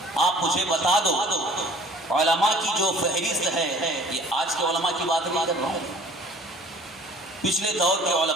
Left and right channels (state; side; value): normal; both; correlation 0.52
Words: آپ مجھے بتا دو علماء کی جو فہرست ہے، یہ آج کے علماء کی بات نہیں کر رہا ہوں، پچھلے دور کے